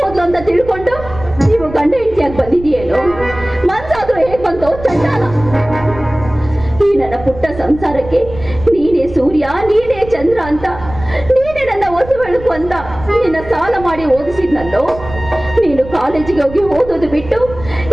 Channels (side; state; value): right; noise; rumble, 14 dB below the sound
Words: ಹೋದ್ಲು ಅಂತ ತಿಳ್ಕೊಂಡು ನೀವು ಗಂಡ ಹೆಂಡತಿಯಾಗಿ ಬಂದಿದೆಯೇನೋ? ಮನ್ಸಾದ್ರೂ ಹೇಗ್ ಬಂತೋ ಚಂಡಾಲ. ಈ ನನ್ನ ಪುಟ್ಟ ಸಂಸಾರಕ್ಕೆ ನೀನೇ ಸೂರ್ಯ ನೀನೇ ಚಂದ್ರ ಅಂತ, ನೀನೇ ನನ್ನ ಹೊಸ ಬೆಳಕು ಅಂತ ನಿನ್ನ ಸಾಲ ಮಾಡಿ ಓದಿಸಿದ್ನಲ್ಲೋ. ನೀನು ಕಾಲೇಜಿಗೆ ಹೋಗಿ ಓದೋದು ಬಿಟ್ಟು